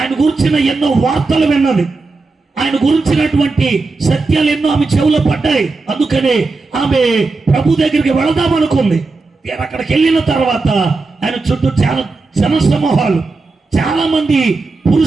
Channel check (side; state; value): left; quieter; 3.8 dB